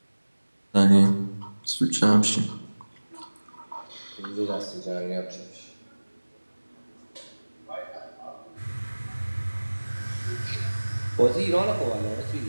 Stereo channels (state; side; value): inverted; both; correlation -1.00